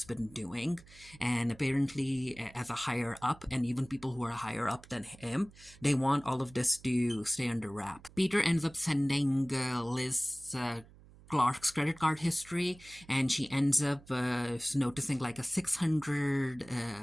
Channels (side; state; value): right; noise; hum, 23 dB below the sound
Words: been doing, and apparently, as a higher up, and even people who are higher up than him, they want all of this to stay under wrap. Peter ends up sending Liz. Clark's credit card history, and she ends up noticing like a